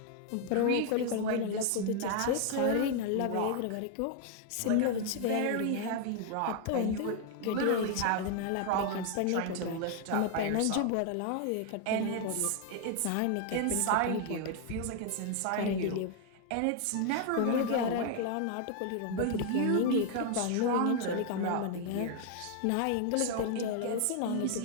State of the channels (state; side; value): different; both; correlation 0.00